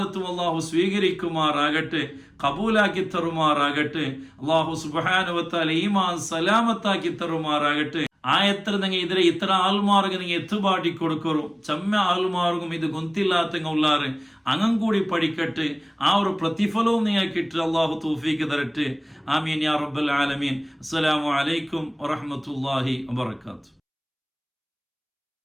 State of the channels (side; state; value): both; identical; correlation 1.00